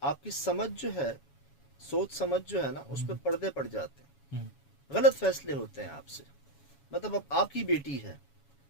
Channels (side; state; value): right; late; 7.2 ms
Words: آپ کی سمجھ جو ہے، سوچ سمجھ جو ہے نا، اس پہ پردے پڑ جاتے ہیں، غلط فیصلے ہوتے ہیں آپ سے۔ مطلب اب آپ کی بیٹی ہے،